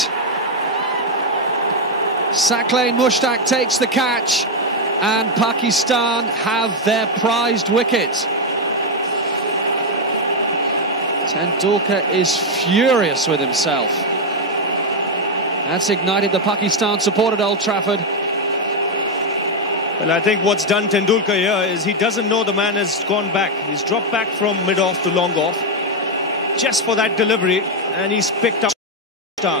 Sack lane Mushtaq takes the catch, and Pakistan have their prized wicket. Tendulkar is furious with himself. That's ignited the Pakistan support at Old Trafford. Well, I think what's done Tendulkar here is he doesn't know the man has gone back. He's dropped back from mid-off to long-off just for that delivery, and he's picked up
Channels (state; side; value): normal; both; correlation 0.03